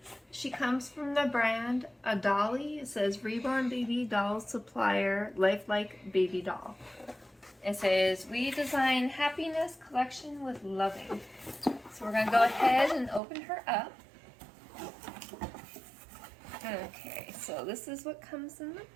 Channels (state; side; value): drops out; left; at 13.2 s